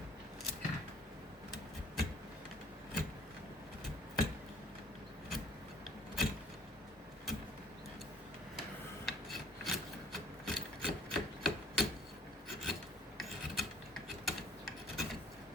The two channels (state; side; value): normal; both; correlation 0.54